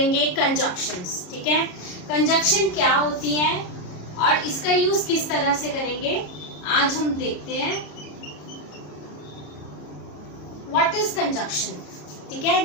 conjunctions. ठीक है, कंजक्शन क्या होती है और इसका यूज किस तरह से करेंगे आज हम देखते हैं। What is conjunction? ठीक है,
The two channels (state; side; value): late; right; 33 ms